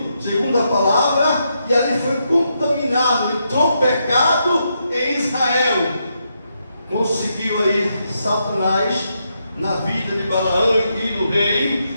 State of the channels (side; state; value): both; inverted; correlation -0.81